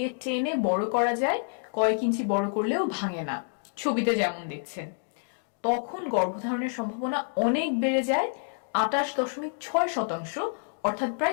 টেনে বড় করা যায়, কয়েক ইঞ্চি বড় করলেও ভাঙে না, ছবিতে যেমন দেখছেন। তখন গর্ভধারণের সম্ভাবনা অনেক বেড়ে যায়, 28.6%, অর্থাৎ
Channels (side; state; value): right; silent; digital silence